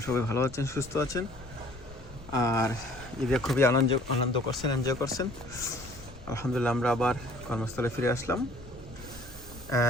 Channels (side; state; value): left; noise; rumble, 17 dB below the sound